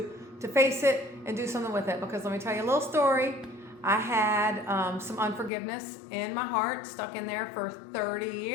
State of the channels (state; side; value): drops out; right; at 5.5 s